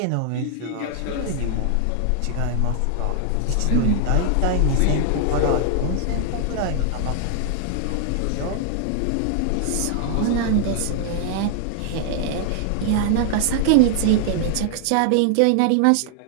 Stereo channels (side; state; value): both; different; correlation 0.00